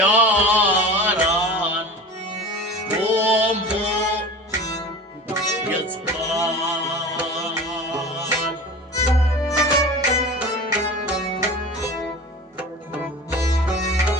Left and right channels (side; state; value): both; normal; correlation 0.35